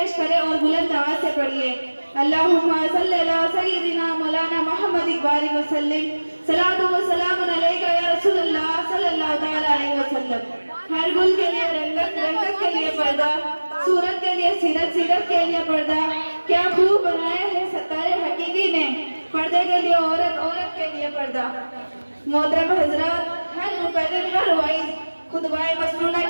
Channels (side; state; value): both; inverted; correlation -1.00